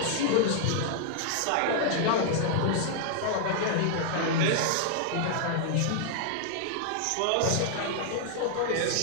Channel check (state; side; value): different; both; correlation -0.01